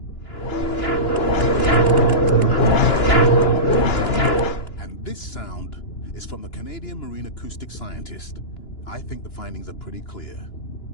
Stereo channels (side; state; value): right; late; 2.9 ms